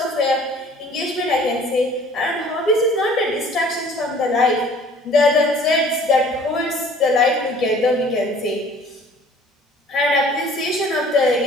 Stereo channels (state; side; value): normal; both; correlation 0.51